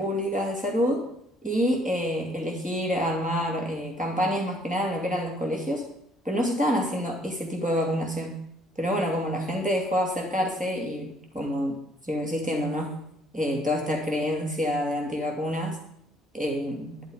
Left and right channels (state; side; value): normal; both; correlation 0.64